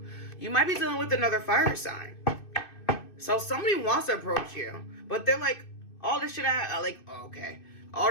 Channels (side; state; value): right; late; 2.5 ms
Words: You might be dealing with another fire sign. So somebody wants to approach you, but they're like, all this shit okay. All